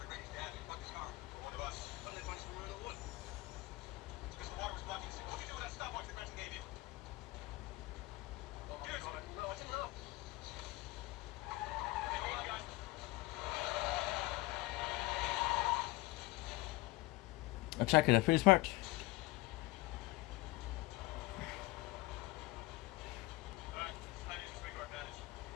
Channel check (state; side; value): quieter; right; 20.0 dB